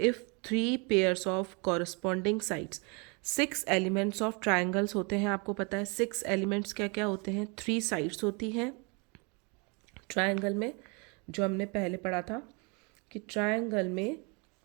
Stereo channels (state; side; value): quieter; left; 31.5 dB